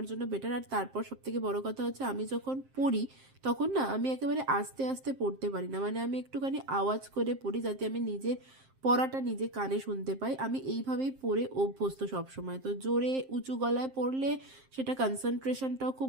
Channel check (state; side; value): late; left; 7.6 ms